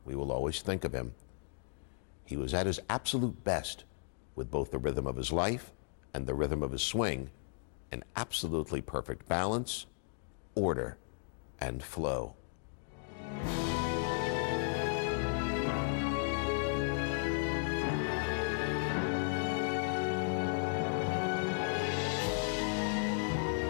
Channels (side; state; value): right; silent; digital silence